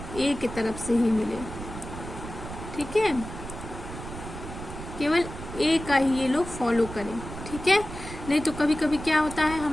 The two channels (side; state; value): right; noise; rumble, 10 dB below the sound